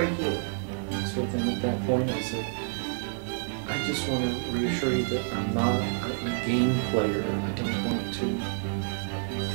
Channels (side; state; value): left; silent; 59 dB below the other